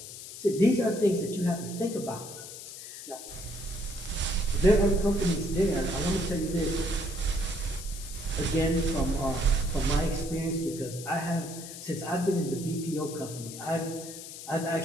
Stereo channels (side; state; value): left; noise; hiss, 12 dB below the sound